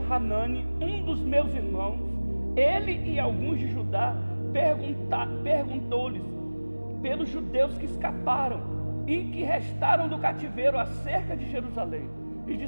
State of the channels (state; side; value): inverted; both; correlation -1.00